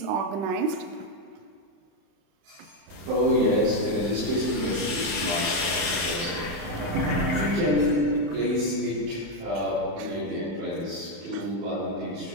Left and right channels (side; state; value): left; late; 35 ms